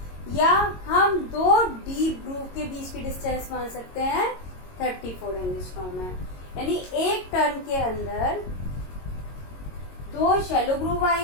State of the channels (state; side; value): late; right; 22 ms